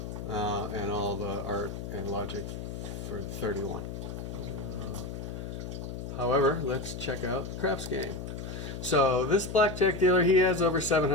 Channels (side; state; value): left; noise; hum, 7 dB below the sound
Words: And all the art and logic for 31. However, let's check out the craps game. So this blackjack dealer, he has over